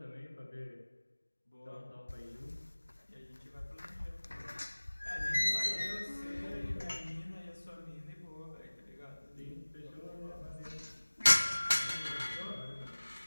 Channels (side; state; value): both; inverted; correlation -1.00